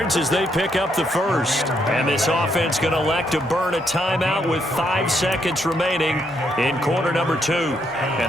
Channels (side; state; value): both; normal; correlation 0.75